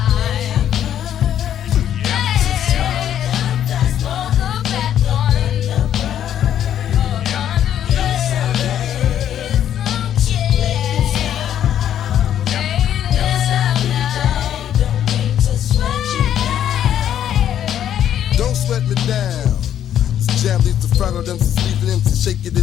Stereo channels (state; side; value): quieter; right; 10.3 dB